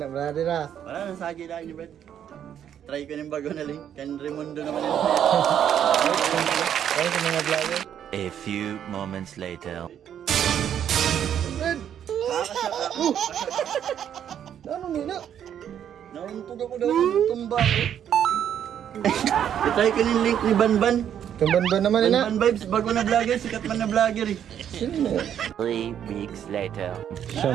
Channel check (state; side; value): quieter; left; 9.5 dB